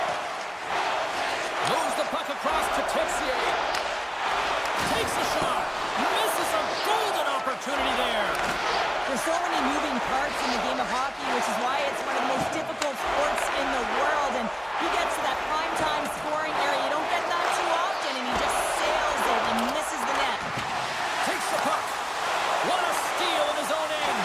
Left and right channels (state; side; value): identical; both; correlation 1.00